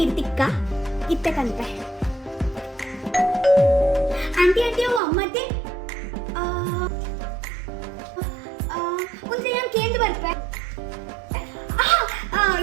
ತಿಕ್ಕ ಇತ್ತಕಂತೆ ಆಂಟಿ ಆಂಟಿ ಅವು ಅಮ್ಮತ್ತೆ ಒಂದ್ಸಲ ಕೇಂದ್ರ ಬರ್ಪೆ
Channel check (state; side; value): drops out; left; at 5.0 s